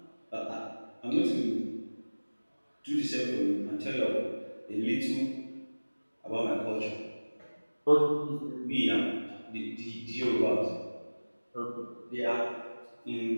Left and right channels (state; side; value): inverted; both; correlation -1.00